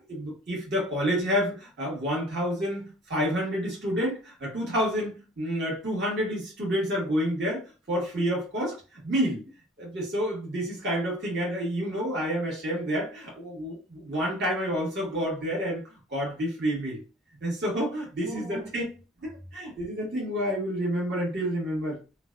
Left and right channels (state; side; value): normal; both; correlation 0.48